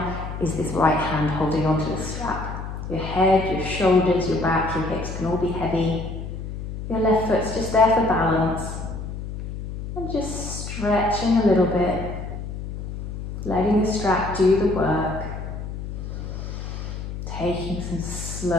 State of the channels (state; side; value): noise; left; hum, 7 dB below the sound